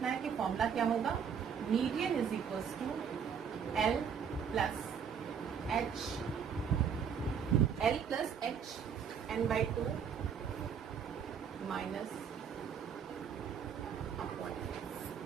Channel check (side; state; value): left; quieter; 7.2 dB